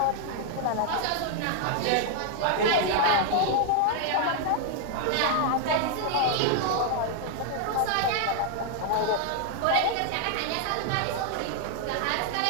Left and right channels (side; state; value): both; different; correlation 0.00